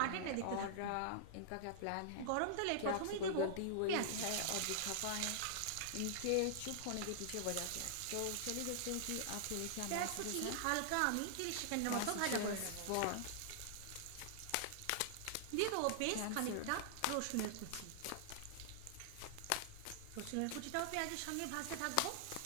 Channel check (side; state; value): both; different; correlation -0.01